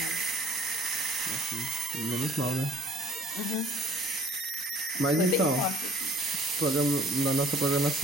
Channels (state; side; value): normal; both; correlation 0.53